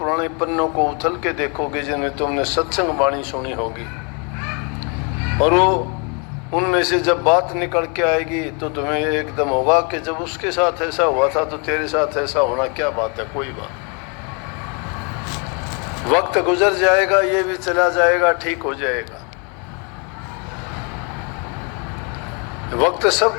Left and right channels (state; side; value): quieter; right; 34.8 dB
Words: पन्नों को उथल के देखोगे जिनमें तुमने सत्संग वाणी सुनी होगी, और वो उनमें से जब बात निकल के आएगी तो तुम्हें एकदम होगा कि जब उसके साथ ऐसा हुआ था तो तेरे साथ ऐसा होना क्या बात है, कोई बात। वक्त गुजर जाएगा, ये भी चला जाएगा, ठीक हो जाएगा। वक्त